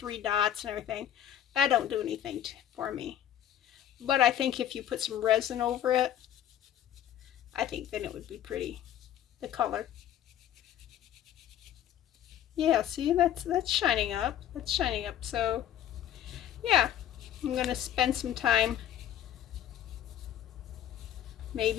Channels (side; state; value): right; quieter; 11.0 dB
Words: dots and everything. That don't do anything for me. But I think if you put some resin over it, I think then it would be pretty. The color. Yeah, see, that's shining up. That's shining up. So, yeah, I'm going to spend some time,